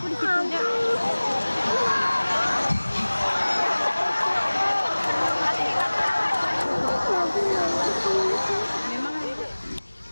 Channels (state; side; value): inverted; both; correlation -1.00